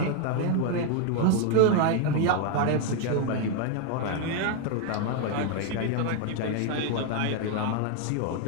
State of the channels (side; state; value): both; different; correlation 0.01